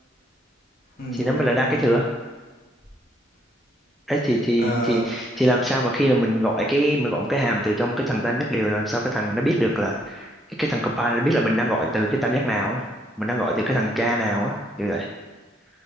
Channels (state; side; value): normal; both; correlation 0.71